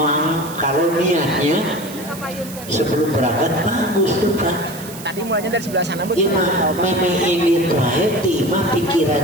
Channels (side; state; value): right; noise; hiss, 15 dB below the sound